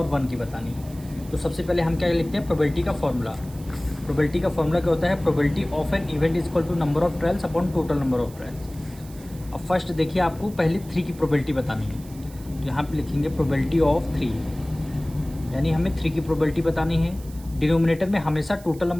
1 की बतानी है। तो सबसे पहले हम क्या लिखते हैं, प्रोबेबिलिटी का फॉर्मूला। प्रोबेबिलिटी का फॉर्मूला क्या होता है, probability of an event is equal to number of trials upon total number of trials. अब फर्स्ट देखिए, आपको पहले 3 की प्रोबेबिलिटी बतानी है, तो यहाँ पे लिखेंगे प्रोबेबिलिटी ऑफ 3, यानी हमें 3 की प्रोबेबिलिटी बतानी है। डिनोमिनेटर में हमेशा टोटल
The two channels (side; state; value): right; noise; hiss, 21 dB below the sound